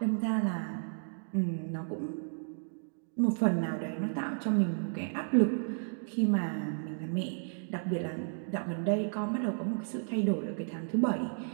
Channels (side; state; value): left; silent; digital silence